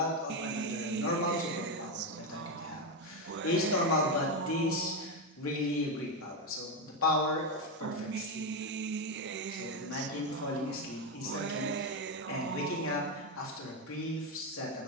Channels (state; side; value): normal; both; correlation 0.09